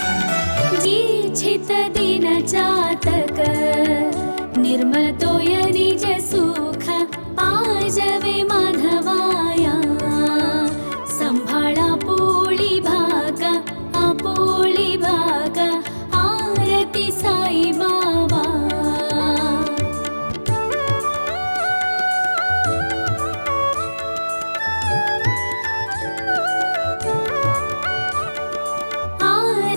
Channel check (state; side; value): inverted; both; correlation -1.00